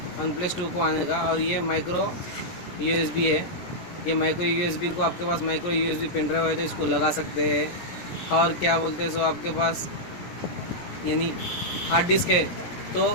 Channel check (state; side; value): late; right; 17 ms